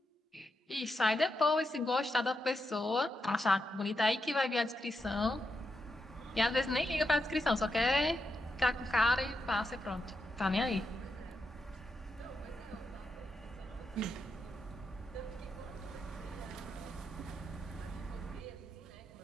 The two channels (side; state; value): both; normal; correlation 0.85